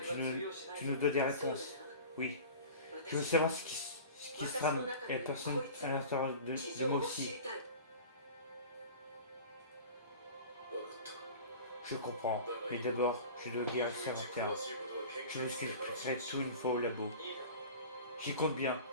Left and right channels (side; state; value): both; inverted; correlation -0.37